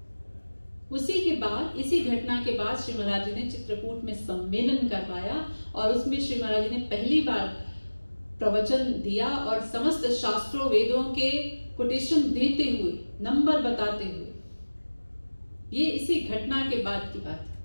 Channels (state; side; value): inverted; both; correlation -1.00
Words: उसी के बाद, इसी घटना के बाद श्री महाराज जी ने चित्रकूट में सम्मेलन करवाया और उसमें श्री महाराज जी ने पहली बार प्रवचन दिया और समस्त शास्त्रों वेदों के कोटेशन देते हुए, नंबर बताते हुए। ये इसी घटना के बाद की बात है।